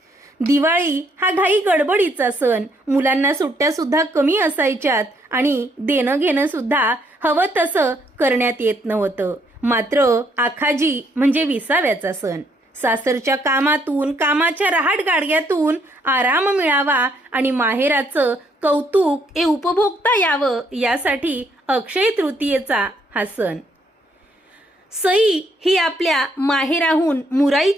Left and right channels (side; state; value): both; normal; correlation 0.70